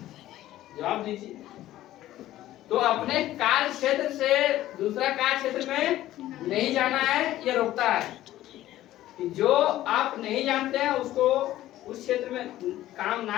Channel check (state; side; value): quieter; right; 14.4 dB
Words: जवाब दीजिए। तो अपने कार्य क्षेत्र से दूसरा कार्य क्षेत्र में नहीं जाना है, ये रोकता है कि जो आप नहीं जानते हैं उसको उस क्षेत्र में काम